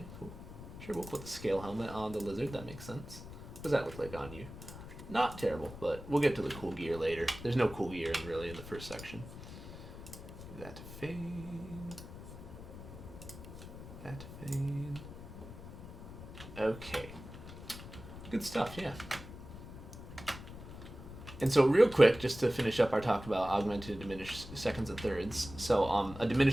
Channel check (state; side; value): noise; left; rumble, 13 dB below the sound